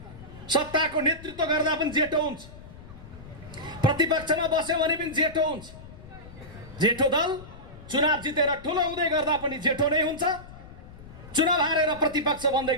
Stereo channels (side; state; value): left; noise; rumble, 17 dB below the sound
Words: सत्ताको नेतृत्व गर्दा पनि जेठो हुन्छ, प्रतिपक्षमा बस्यो भने पनि जेठो हुन्छ। जेठो दल चुनाव जितेर ठुलो हुँदै गर्दा पनि जेठो नै हुन्छ, चुनाव हारेर प्रतिपक्ष बन्दै